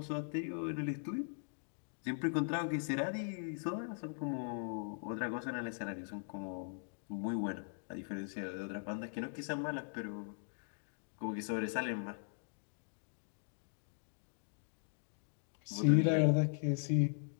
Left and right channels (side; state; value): right; silent; digital silence